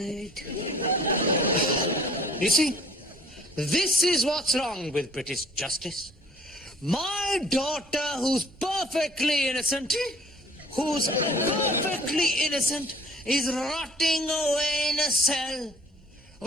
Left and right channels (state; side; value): normal; both; correlation 0.52